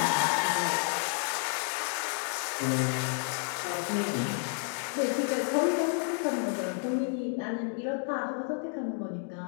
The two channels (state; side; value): silent; right; 57 dB below the other